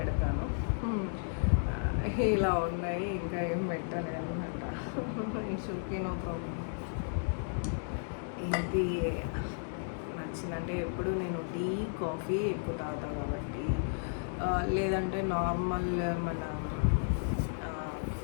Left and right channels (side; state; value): right; silent; digital silence